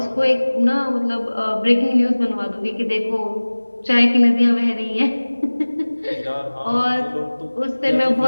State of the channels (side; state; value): both; inverted; correlation -1.00